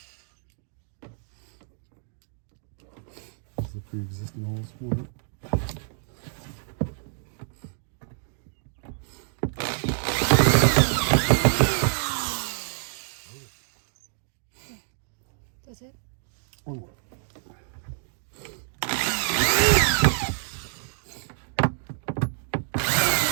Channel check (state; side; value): silent; left; digital silence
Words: This is the pre-existing holes for it. That's it? One more.